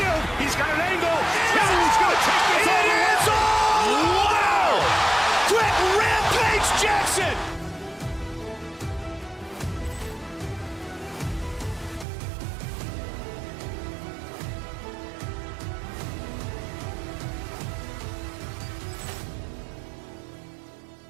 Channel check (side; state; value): left; drops out; at 12.1 s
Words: He's got an angle. Hill's going to take this all the way. Wow! Quick rampage Jackson!